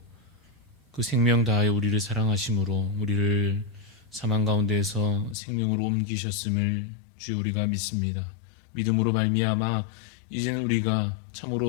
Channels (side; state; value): right; drops out; at 5.4 s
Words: 그 생명 다하여 우리를 사랑하심으로 우리를 사망 가운데에서 생명으로 옮기셨음을 주여 우리가 믿습니다. 믿음으로 말미암아 이제는 우리가